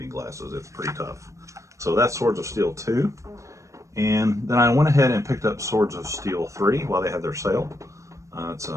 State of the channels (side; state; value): left; late; 0.15 ms